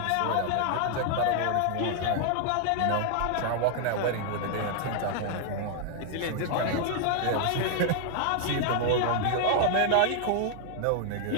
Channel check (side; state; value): both; different; correlation 0.00